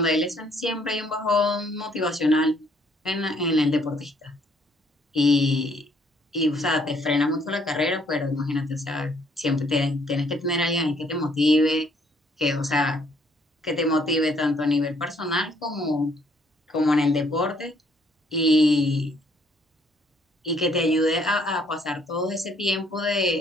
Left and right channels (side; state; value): both; normal; correlation 0.66